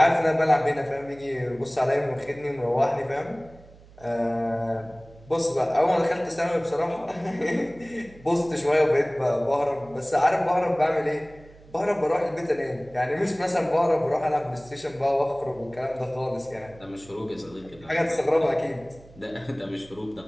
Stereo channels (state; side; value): noise; right; hum, 23 dB below the sound